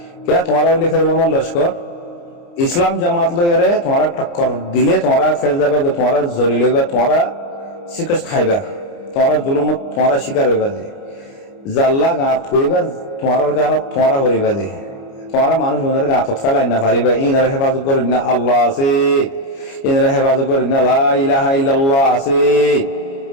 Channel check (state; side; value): late; right; 29 ms